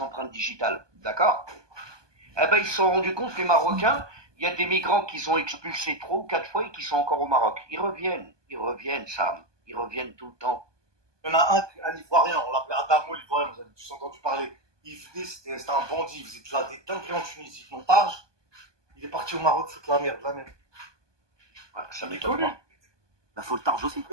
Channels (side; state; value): left; late; 1.2 ms